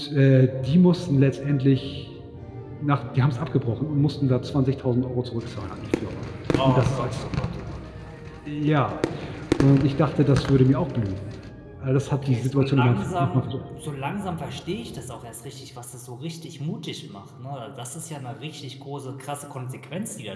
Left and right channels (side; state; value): both; identical; correlation 1.00